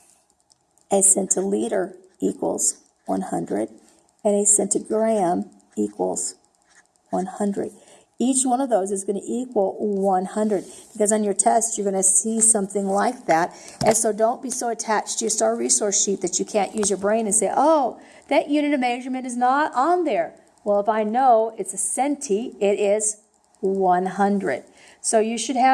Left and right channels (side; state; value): both; identical; correlation 1.00